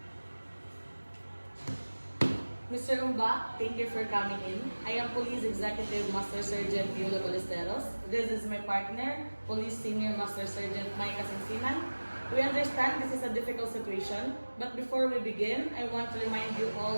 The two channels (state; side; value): inverted; both; correlation -1.00